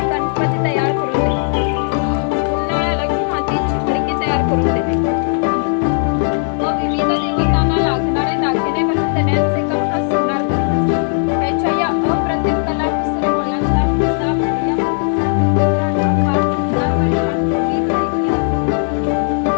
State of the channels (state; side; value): silent; right; 68 dB below the other